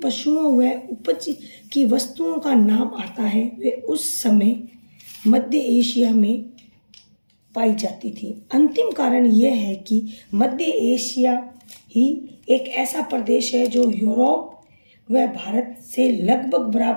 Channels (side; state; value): both; inverted; correlation -1.00